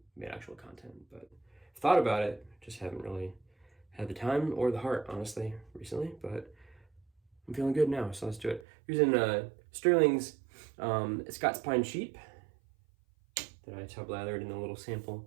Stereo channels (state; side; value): drops out; left; at 8.7 s